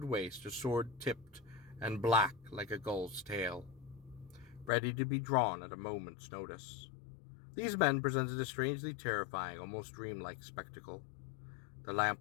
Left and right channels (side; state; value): right; drops out; at 4.7 s